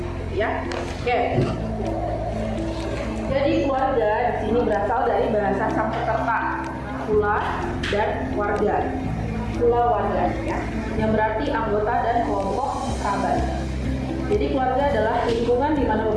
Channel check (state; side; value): identical; both; correlation 1.00